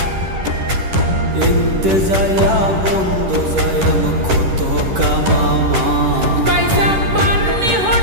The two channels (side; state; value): left; late; 10 ms